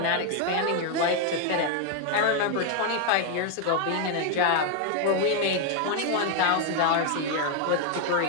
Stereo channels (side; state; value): both; different; correlation 0.01